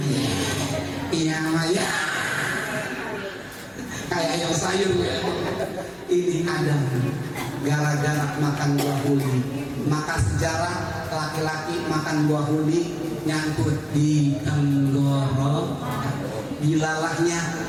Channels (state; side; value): identical; both; correlation 1.00